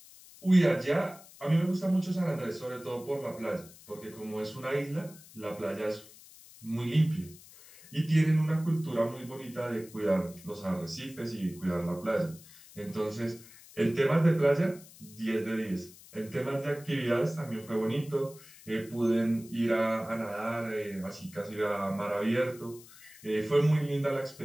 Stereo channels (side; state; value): left; noise; hiss, 21 dB below the sound